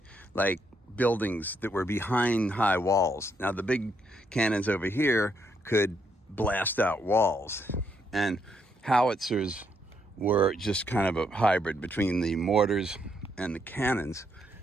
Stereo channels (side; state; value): both; normal; correlation 0.75